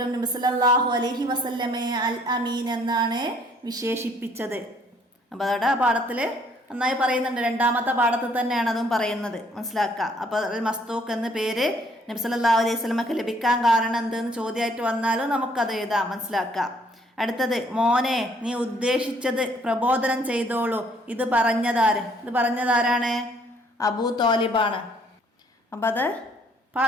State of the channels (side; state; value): both; normal; correlation 0.63